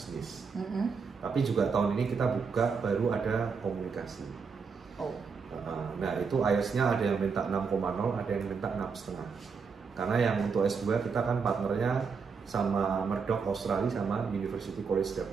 Tapi juga tahun ini kita buka baru ada komunikasi. Nah itu IELTS-nya ada yang minta 6,0, ada yang minta 6,5. Karena yang untuk S2 kita kan partnernya sama Murdoch Australia sama University College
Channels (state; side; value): quieter; left; 5.5 dB